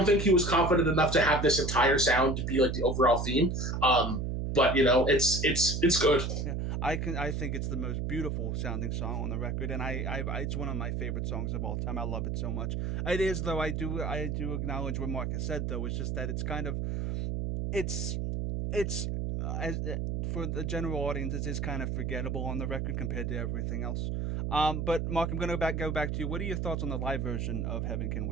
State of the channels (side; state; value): right; noise; hum, 1 dB below the sound